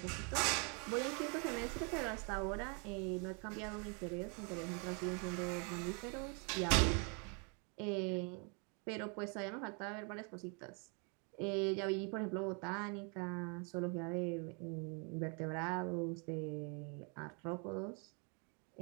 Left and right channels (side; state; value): left; quieter; 36.2 dB